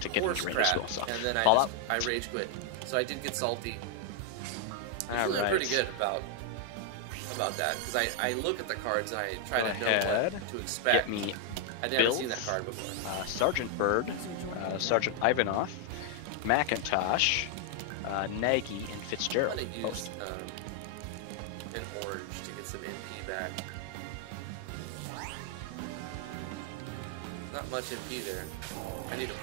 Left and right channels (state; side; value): different; both; correlation 0.00